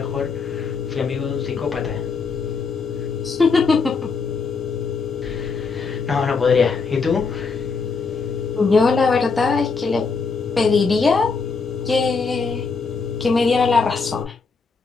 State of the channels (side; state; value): right; quieter; 4.8 dB